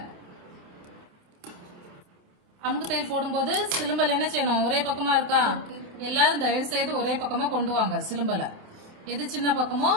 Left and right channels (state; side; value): late; left; 28 ms